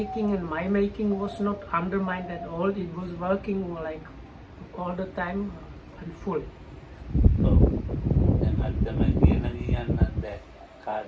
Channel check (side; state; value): both; identical; correlation 1.00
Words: and my making was not undermined at all. It was working like all the time and full. Oh.